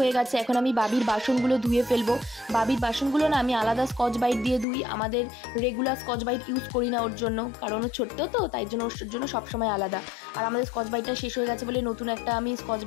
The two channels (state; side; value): drops out; right; at 4.7 s